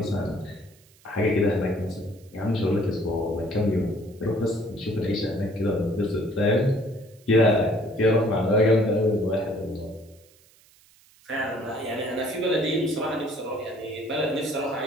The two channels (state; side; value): noise; right; hiss, 29 dB below the sound